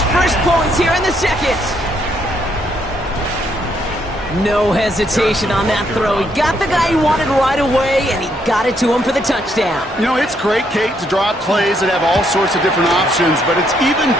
first points here in the second. No hesitation on that throw. He got the guy he wanted right away, and he got it to him for the touchdown. You know, it's great, Kate, to draw up plays that have all sorts of different options, but it's even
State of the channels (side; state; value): both; normal; correlation 0.73